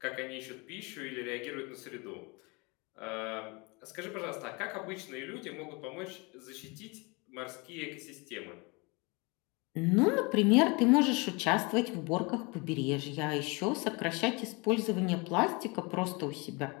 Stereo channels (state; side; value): quieter; right; 28.2 dB